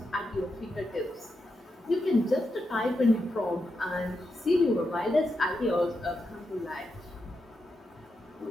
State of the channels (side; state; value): both; normal; correlation 0.86